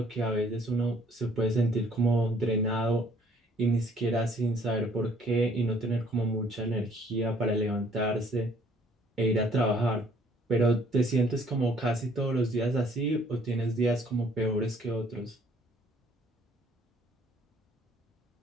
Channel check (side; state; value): both; normal; correlation 0.60